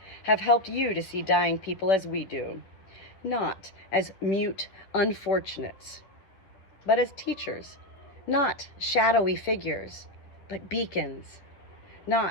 have helped you to see dying people as we do, not as mute unfortunates, but as teachers, not shadowy figures, but beacons,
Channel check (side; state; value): right; late; 10 ms